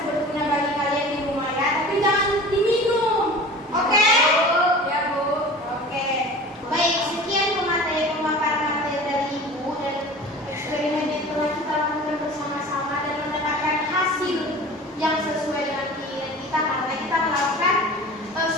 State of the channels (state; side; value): normal; both; correlation 0.39